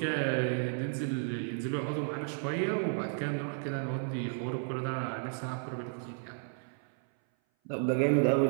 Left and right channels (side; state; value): left; silent; 56 dB below the other